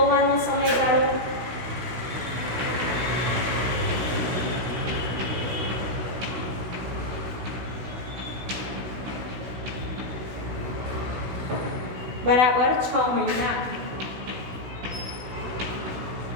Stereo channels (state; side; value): late; left; 16 ms